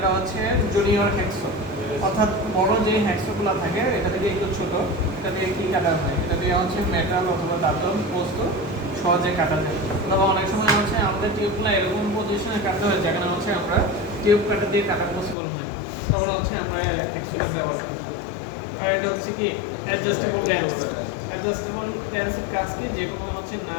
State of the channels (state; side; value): drops out; right; at 15.4 s